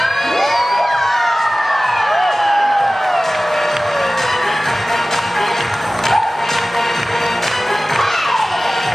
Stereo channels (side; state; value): both; normal; correlation 0.97